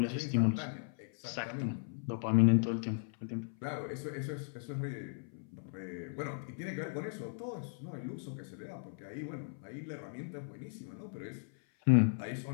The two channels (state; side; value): silent; right; 53 dB below the other